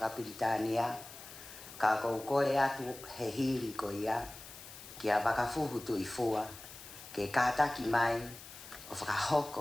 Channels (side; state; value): left; noise; hiss, 15 dB below the sound